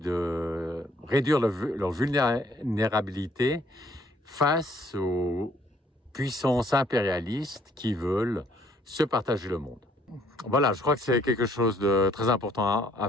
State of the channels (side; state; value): both; normal; correlation 0.64